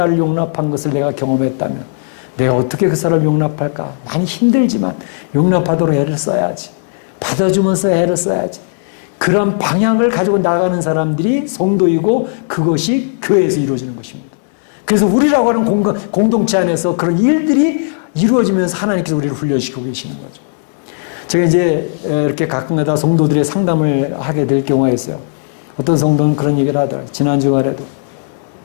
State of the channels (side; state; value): right; silent; digital silence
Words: 용납한 것을 내가 경험했다면 내가 어떻게 그 사람을 용납할까? 많이 힘들지만 용납하도록 애를 써야지. 받아주면서 애를 써야지. 그런 방향을 가지고 나가는 사람들이 성도이고 그것이 교회에서 이루어지는 것입니다. 그래서 우리라고 하는 공동체 안에서 그런 일들이 이루어지면서 하나님께서 우리를 훈련시키고 계시는 거죠. 제가 이제 이렇게 가끔가다 성도들의 상담을 하게 될 경우가 있어요. 어떤 성도는 그런 얘기를 하더라고요. 지난 주말에도